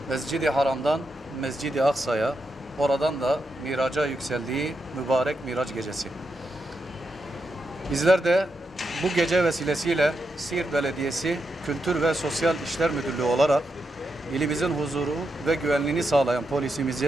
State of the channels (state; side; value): normal; both; correlation 0.85